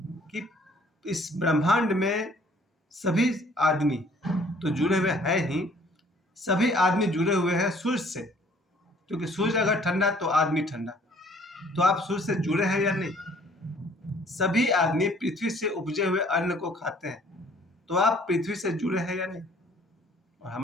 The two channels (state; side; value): normal; both; correlation 0.57